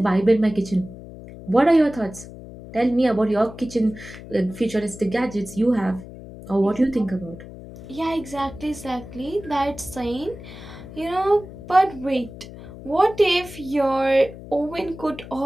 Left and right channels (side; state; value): left; noise; hum, 15 dB below the sound